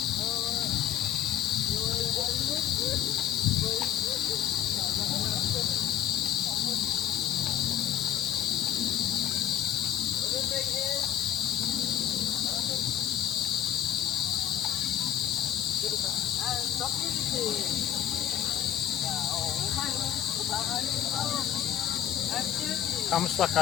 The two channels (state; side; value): quieter; right; 10.9 dB